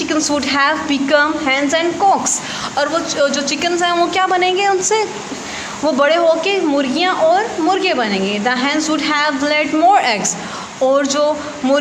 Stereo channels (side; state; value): both; identical; correlation 1.00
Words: would have become hens and cocks, और वो जो चिकन्स हैं वो क्या बनेंगे, उनसे वो बड़े होके मुर्गियाँ और मुर्गे बनेंगे। The hence would have led more eggs, और जो